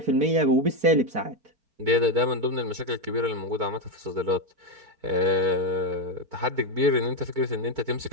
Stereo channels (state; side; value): late; left; 4.5 ms